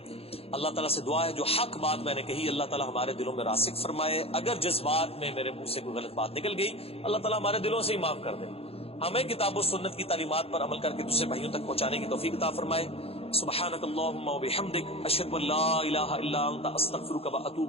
اللہ تعالیٰ سے دعا ہے جو حق بات میں نے کہی اللہ تعالیٰ ہمارے دلوں میں راسخ فرمائے. اگر جذبات میں میرے منہ سے کوئی غلط بات نکل گئی اللہ تعالیٰ ہمارے دلوں سے ہی معاف کر دے. ہمیں کتاب و سنت کی تعلیمات پر عمل کر کے دوسرے بھائیوں تک پہنچانے کی توفیق عطا فرمائے. سبحانک اللہم و بحمدک, اشہد ان لا الہ الا انت, استغفرک و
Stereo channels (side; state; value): right; late; 0.28 ms